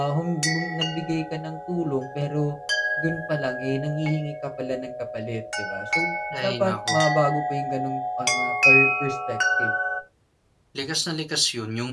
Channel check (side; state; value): both; identical; correlation 1.00